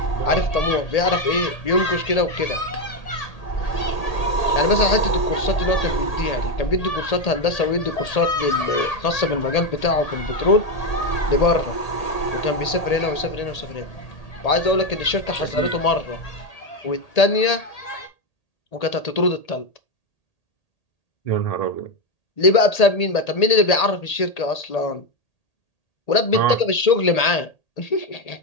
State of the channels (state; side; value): late; right; 1.8 ms